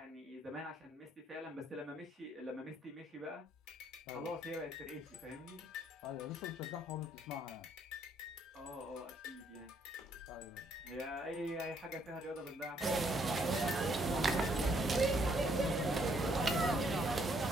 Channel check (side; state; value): both; normal; correlation 0.69